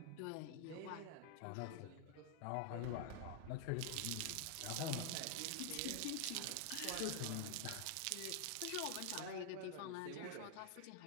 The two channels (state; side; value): different; both; correlation 0.00